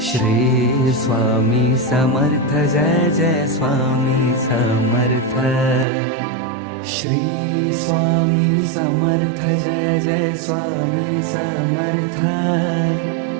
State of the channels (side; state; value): left; drops out; at 5.9 s